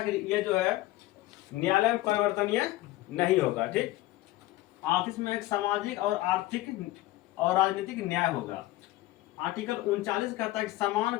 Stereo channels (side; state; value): right; quieter; 17.1 dB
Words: कि ये जो है न्यायालय में परिवर्तनीय नहीं होगा। ठीक, 38 में एक सामाजिक और आर्थिक और राजनीतिक न्याय होगा। आर्टिकल 39 कहता है कि समान